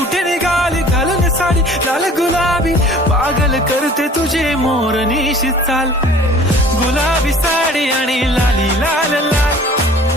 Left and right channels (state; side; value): normal; both; correlation 0.49